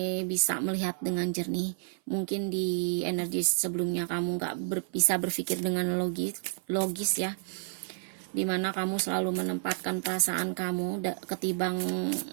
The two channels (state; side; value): silent; left; 57 dB below the other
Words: bisa melihat dengan jernih. Mungkin di energi sebelumnya kamu nggak bisa berpikir dengan logis ya, dimana kamu selalu menempatkan perasaan kamu ketimbang